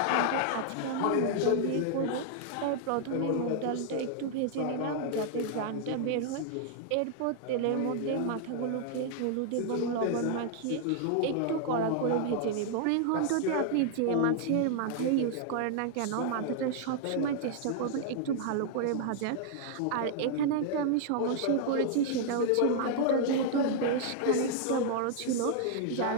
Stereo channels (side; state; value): both; different; correlation 0.00